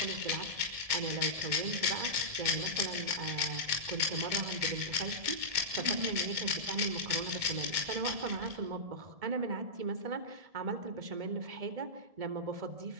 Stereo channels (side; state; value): left; late; 1.7 ms